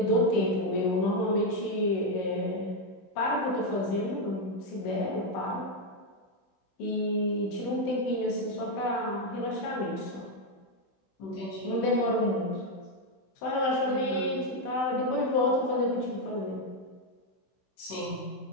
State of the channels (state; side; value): late; right; 16 ms